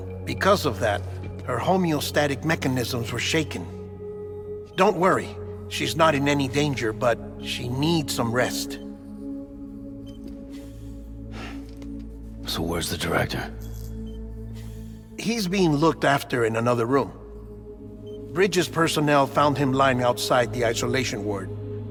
Because of that, her homeostatic mechanisms were shaken. Don't worry, she's not in any danger, but she needs some rest. So where's the director? He's being looked after in another room. Bridges personnel found him lying outside the isolation ward,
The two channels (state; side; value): identical; both; correlation 1.00